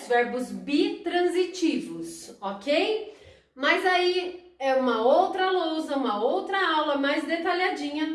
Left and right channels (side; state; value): both; identical; correlation 1.00